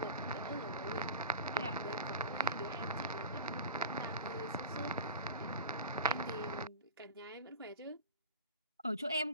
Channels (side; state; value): both; inverted; correlation -0.33